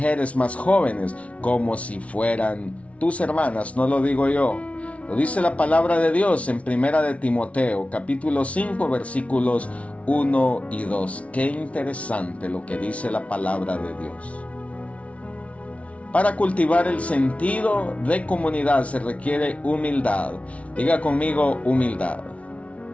más jóvenes como si fueran tus hermanas. No lo digo yo, lo dice la palabra de Dios en Primera de Timoteo, capítulo 5, versículos 1 y 2. Qué interesante lo que dice la palabra de Dios. Para cultivar el sentido de comunidad se requiere humildad. Diga conmigo, humildad.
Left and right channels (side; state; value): right; late; 0.064 ms